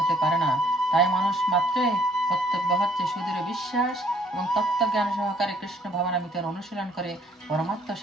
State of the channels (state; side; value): normal; both; correlation 0.62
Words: পারে না। তাই মানুষ মাত্রই কর্তব্য হচ্ছে সুদৃঢ় বিশ্বাস এবং তত্ত্বজ্ঞান সহকারে কৃষ্ণ ভাবনামৃতের অনুশীলন করে পরমাত্ম